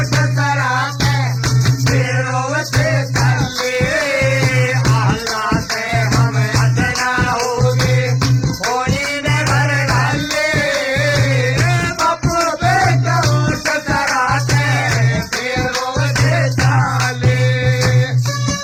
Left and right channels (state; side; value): identical; both; correlation 1.00